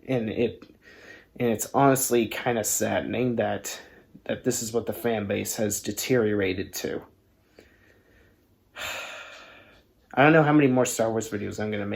And it's honestly kind of saddening that this is what the fan base has deteriorated to. I don't know how many more Star Wars videos I'm going to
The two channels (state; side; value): identical; both; correlation 1.00